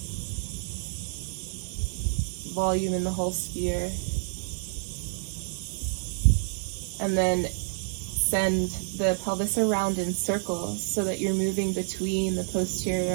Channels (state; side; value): silent; left; digital silence